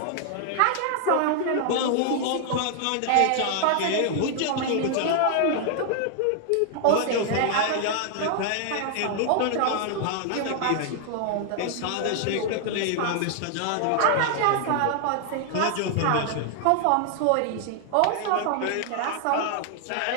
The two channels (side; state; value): both; different; correlation 0.00